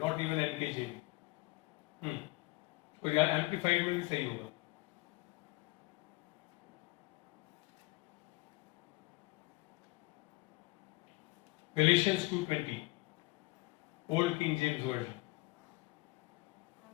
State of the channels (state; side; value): quieter; right; 22.3 dB